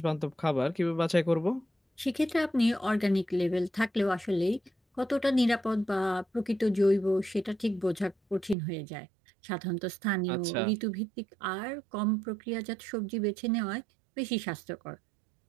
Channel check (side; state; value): left; drops out; at 8.6 s